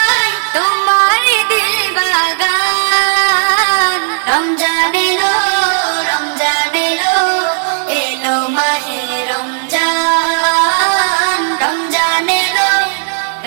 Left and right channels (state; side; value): silent; left; digital silence